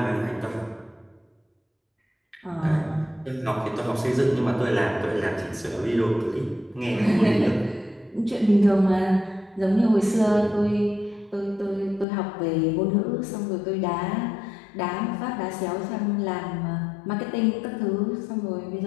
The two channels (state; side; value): drops out; right; at 12.1 s